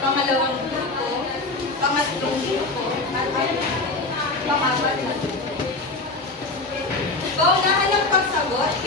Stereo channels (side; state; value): right; quieter; 3.2 dB